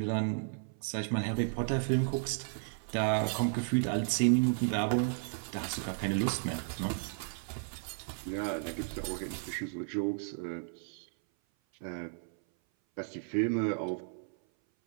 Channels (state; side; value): silent; left; 55 dB below the other